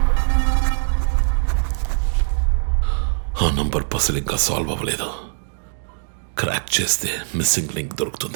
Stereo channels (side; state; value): left; silent; digital silence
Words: ఆ నంబర్ పసిల్ ఇంకా సాల్వ్ అవ్వలేదు. క్రాక్ చేస్తే మిస్సింగ్ లింక్